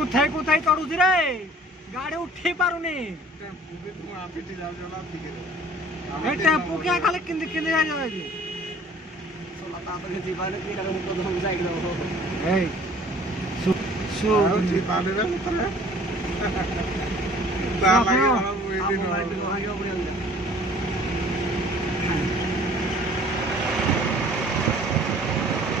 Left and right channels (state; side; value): normal; both; correlation 0.52